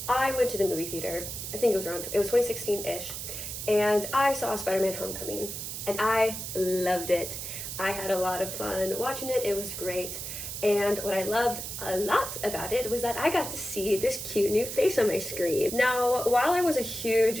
I went to the movie theater. I think it was 2016-ish, and I saw Spider-Man Homecoming, and I loved it. I had a lot of fun watching it. It was great. And what I loved a lot about it was that I got to see this cute new face on my screen. Now, while I was a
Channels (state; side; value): noise; right; hiss, 7 dB below the sound